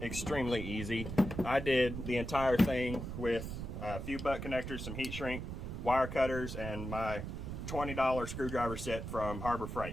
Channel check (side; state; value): right; noise; rumble, 6 dB below the sound